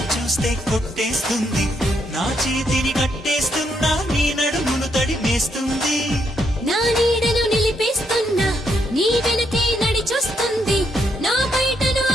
చూస్తే కొట్టేస్తుంది నా చేతిని కట్టేస్తున్నా నీ నడుమును తడిమేస్తుంది నా నీడను నిలిపేస్తున్నా నీ వెనకే నడిచొస్తుంది నా బయటను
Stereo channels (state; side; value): normal; both; correlation 0.76